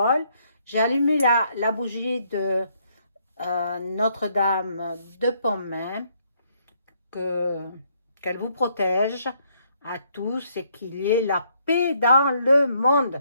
J'ai allumé la bougie de Notre-Dame de Pontmain, qu'elle vous protège à tous et qu'il y ait la paix dans le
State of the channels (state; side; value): inverted; both; correlation -0.71